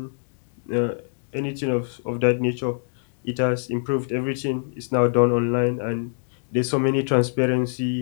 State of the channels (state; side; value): silent; right; digital silence